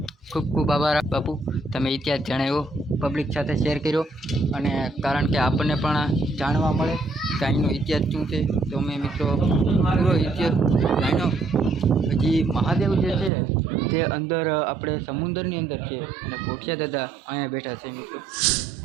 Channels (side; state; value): left; drops out; at 13.3 s